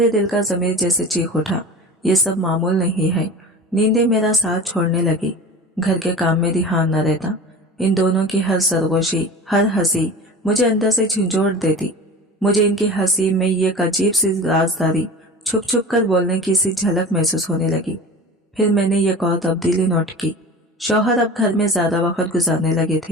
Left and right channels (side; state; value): both; normal; correlation 0.35